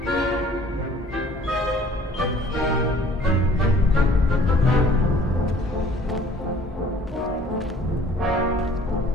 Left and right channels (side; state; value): both; normal; correlation 0.54